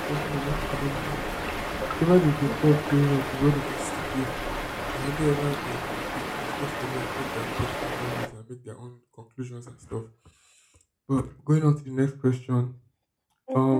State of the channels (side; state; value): both; identical; correlation 1.00